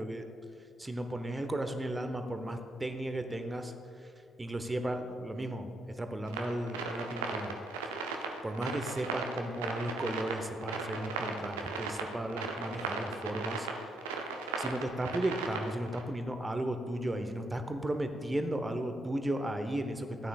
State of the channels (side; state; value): both; normal; correlation 0.78